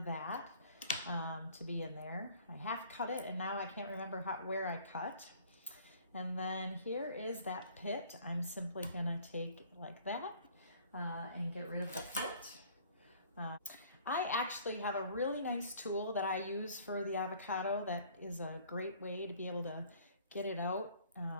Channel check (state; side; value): inverted; both; correlation -0.54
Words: to be in there. I half cut it, and now I can't remember where I cut. And then here is that pit. I'm simply gonna take like that and get rid of the pit. I actually have a really nice tool that I use for the avocado that is a great way to be able to get it out